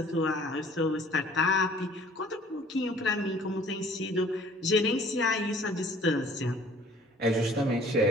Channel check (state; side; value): normal; both; correlation 0.53